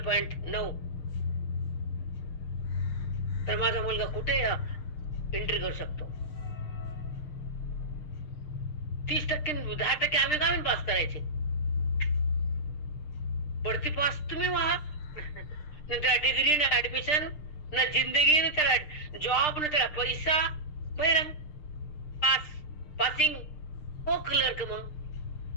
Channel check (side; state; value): right; late; 6.6 ms